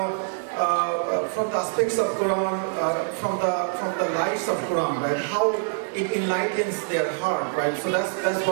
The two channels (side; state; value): left; silent; 58 dB below the other